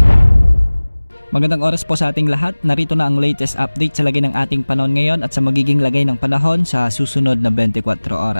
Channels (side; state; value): both; inverted; correlation -1.00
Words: Magandang oras po sa ating lahat. Narito na ang latest update sa lagay ng ating panahon ngayon at sa magiging lagay ng panahon sa susunod na 24